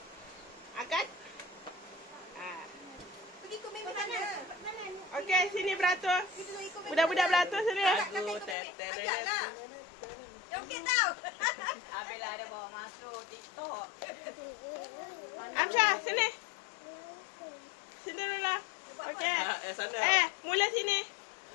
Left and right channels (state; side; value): drops out; right; at 8.6 s